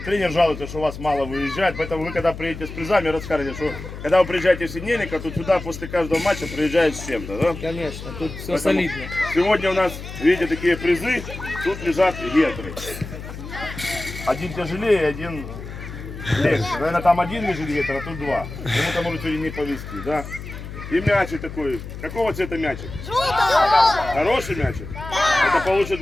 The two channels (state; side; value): noise; left; hum, 11 dB below the sound